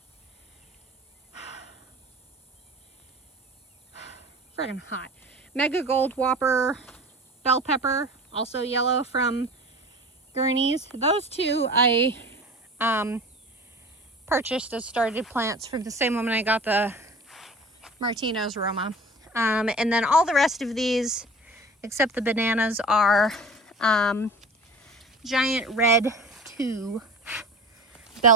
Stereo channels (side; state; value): both; normal; correlation 0.39